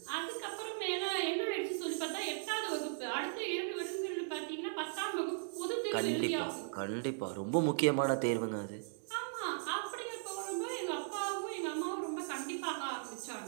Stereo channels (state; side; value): silent; left; digital silence